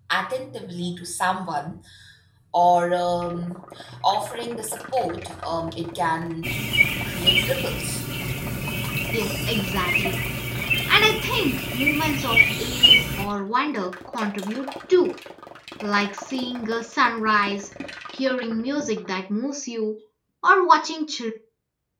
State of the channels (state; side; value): identical; both; correlation 1.00